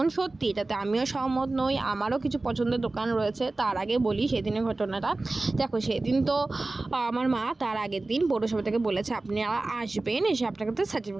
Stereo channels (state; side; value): quieter; left; 3.1 dB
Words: সত্যি এটাতে আমিও সহমত নই, আমারও কিছু পছন্দের দোকান রয়েছে। তার আগে বলি সেদিনের ঘটনাটা। দেখো সেদিন তো আমার মা তার আগের দিন পৌরসভা থেকে বলেছে আপনারা আসবেন, এসে আপনাকে তো